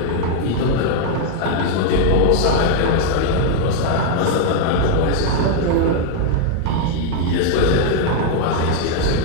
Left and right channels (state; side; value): different; both; correlation 0.00